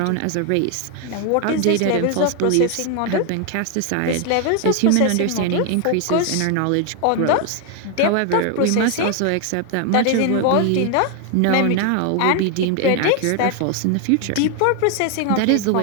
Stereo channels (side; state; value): both; different; correlation 0.01